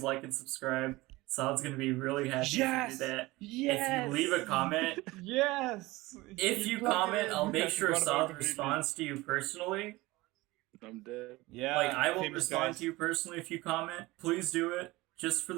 like and subscribe. Saad's gonna be really happy Yes! if you do that. Yes! If you leave a comment, Yes! if you plugged it comment, in. I'll make I sure forgot about it Saad completely. responds to you personally. I'm dead. Yeah. Like, I will famous respond guys. to you personally if you comment. Please do it. Just for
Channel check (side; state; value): left; quieter; 20.5 dB